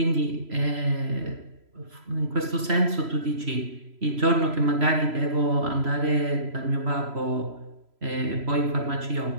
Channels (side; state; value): left; late; 3.0 ms